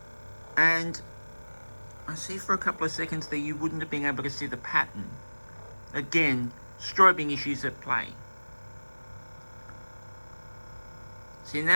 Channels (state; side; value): inverted; both; correlation -1.00